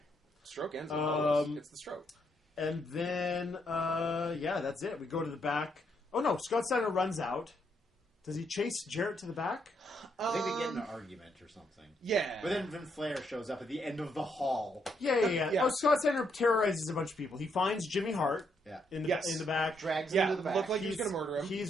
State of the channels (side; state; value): both; normal; correlation 0.75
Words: Stroke ends. It's the stroke. And then, that's it. We go to the back. Oh, no. Scott Steiner runs out Does he chase Jarrett to the back? I think they get in an argument or something. Yeah. But then Flair shows up at the end of the hall. Yeah. Yeah. Oh, Scott Steiner terrorizes a bunch of people. He finds Jimmy Hart Yeah. in the Yes. in the back. Drags him Yeah, to the back. looked like he was going to murder him. He's